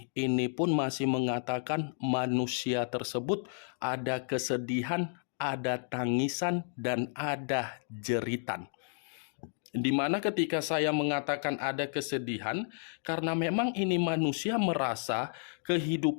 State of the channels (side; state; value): right; silent; digital silence